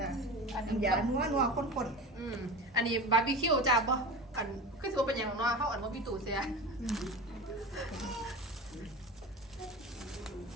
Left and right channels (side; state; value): both; normal; correlation 0.30